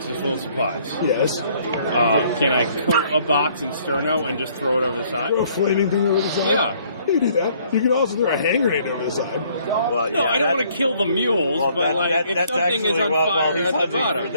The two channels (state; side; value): inverted; both; correlation -0.63